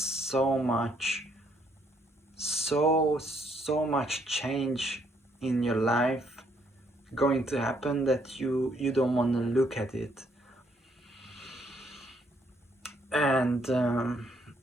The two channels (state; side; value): normal; both; correlation 0.70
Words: much change in your life going to happen that you don't want to look at it. And